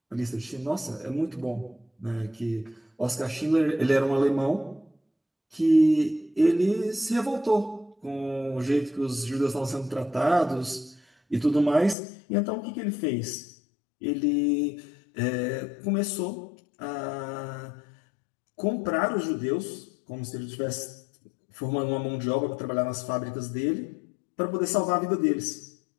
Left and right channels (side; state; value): right; drops out; at 12.0 s